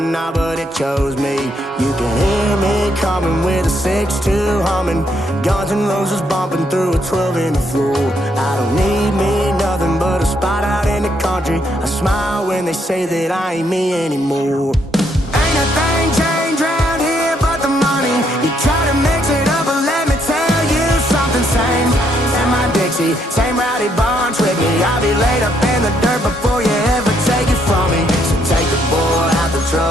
now, but it chose me. You can hear me coming with a 6-2 humming, Guns N' Roses bumping through a 12 in the floor. I don't need me nothing but a spot out in the country. I smile when they say that I ain't me anymore. Ain't a thing changed around here but the money. You try to mix it up, but let me tell you something. Same in my Dixie, same rowdy bunch with me. I'll be laid up in the dirt before you ever take it from me. So take the boy out the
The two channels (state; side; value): normal; both; correlation 0.73